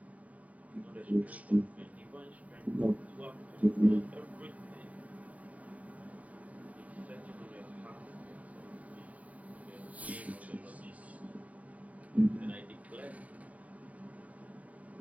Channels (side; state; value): left; late; 0.070 ms